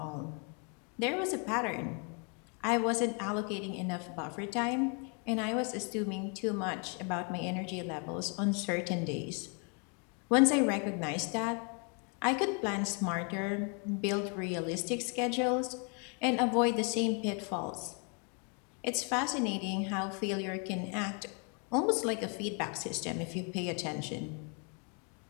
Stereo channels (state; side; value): quieter; right; 37.0 dB